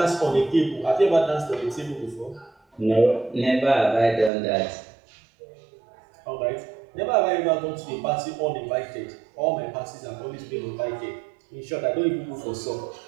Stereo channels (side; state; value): left; drops out; at 4.3 s